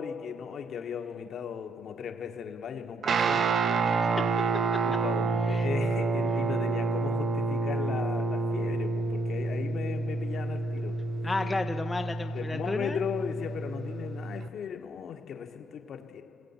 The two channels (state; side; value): normal; both; correlation 0.72